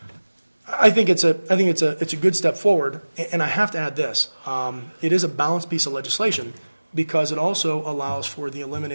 think it's a good step forward. And I have to add this: it is a balanced piece of legislation because it also allows for the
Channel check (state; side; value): inverted; both; correlation -1.00